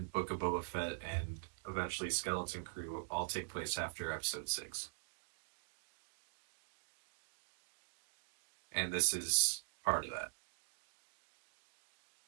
Book of Boba Fett and eventually Skeleton Crew will all take place after Episode 6. And this is part of that.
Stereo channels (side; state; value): left; silent; digital silence